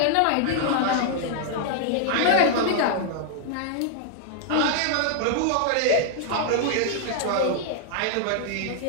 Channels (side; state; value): both; different; correlation 0.00